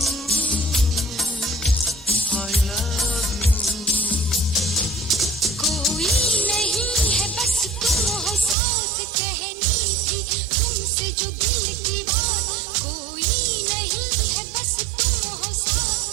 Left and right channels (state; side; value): drops out; left; at 8.6 s